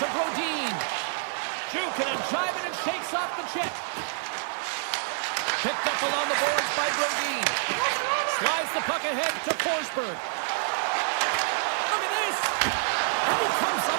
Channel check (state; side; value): silent; left; 60 dB below the other